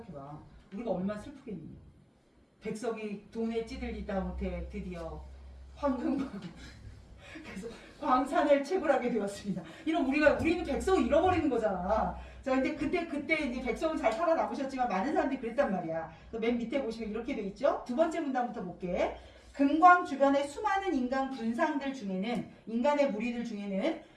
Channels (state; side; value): identical; both; correlation 1.00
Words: 우리가 얼마나 슬프겠니? 백석이 돈에 찌들리다 못해 드디어 황금광 그래서 광산을 채굴하게 되었습니다. 이런 우리는 백석을 잃어버리는 거잖아. 자, 근데 그때 이제 백성은 잘 살아남으셨지만 많은 사람들이 그랬단 말이야. 맨 밑에 보시면 이렇게 돼 있죠. 두 번째 문단부터 볼게. 금광 주변의 수많은 인간 군상들 중에는 인간의 무리들 중에는